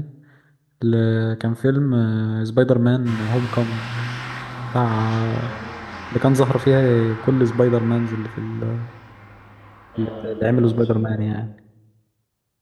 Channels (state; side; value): identical; both; correlation 1.00